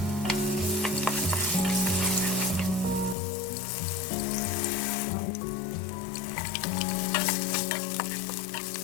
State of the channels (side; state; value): right; drops out; at 3.2 s